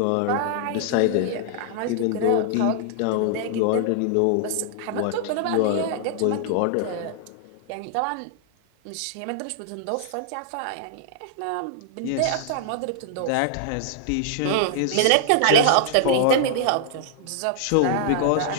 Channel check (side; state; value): both; different; correlation -0.01